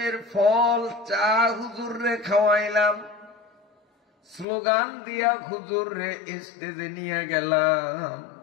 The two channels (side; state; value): right; drops out; at 4.5 s